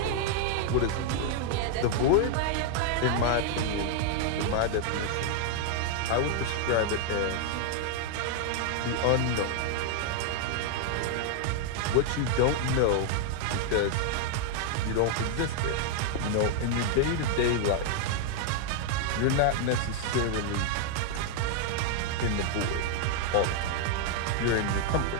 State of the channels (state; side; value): different; both; correlation 0.00